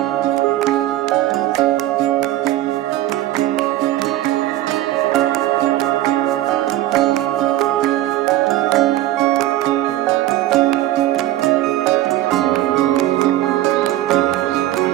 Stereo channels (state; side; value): quieter; left; 14.7 dB